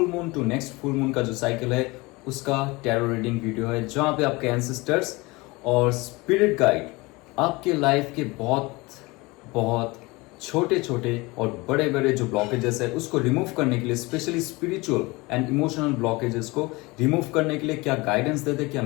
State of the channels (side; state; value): right; quieter; 23.6 dB